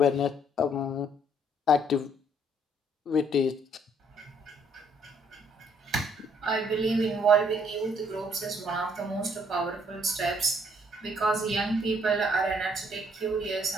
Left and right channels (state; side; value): normal; both; correlation 0.65